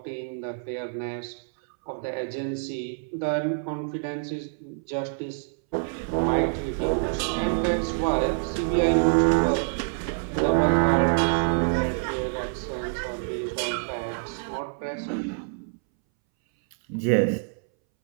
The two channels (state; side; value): silent; left; 61 dB below the other